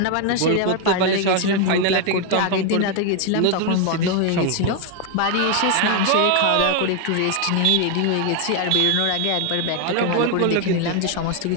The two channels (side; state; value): both; different; correlation 0.01